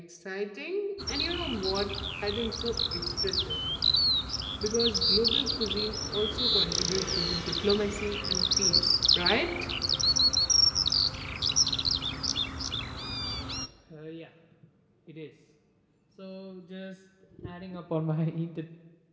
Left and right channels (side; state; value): both; identical; correlation 1.00